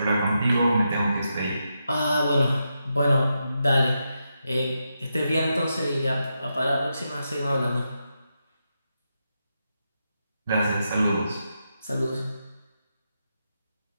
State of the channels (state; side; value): inverted; both; correlation -0.85